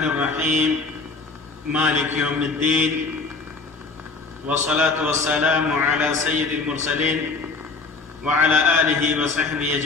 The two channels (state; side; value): quieter; right; 4.1 dB